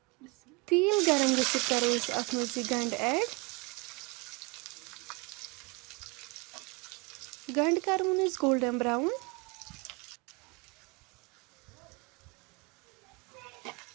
تیٖل گرم گٔژھِتھ کرو أسۍ اتھ منٛز یہِ گنٛڈٕ ایڈ گنٛڈٕ کرون أسۍ گولڈن براوُن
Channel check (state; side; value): quieter; left; 28.0 dB